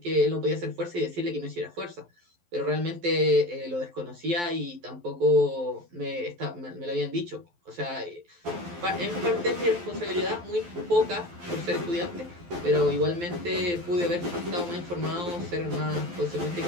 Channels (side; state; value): left; late; 12 ms